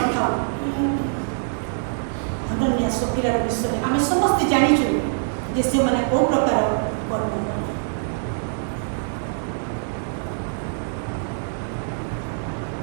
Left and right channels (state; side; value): silent; left; digital silence